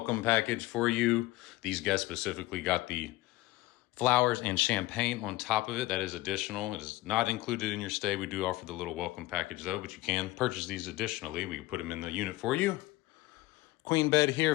package for you. These guests specifically got the flowers and champagne on top of it. That is additional. It is not included in your stay. We do offer the little welcome package though, but you can purchase these additionally. We can put them in the unit for you. Queen bed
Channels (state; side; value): quieter; right; 18.6 dB